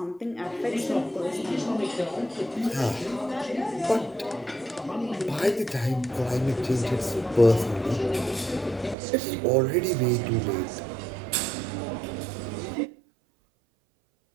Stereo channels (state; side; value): drops out; left; at 9.0 s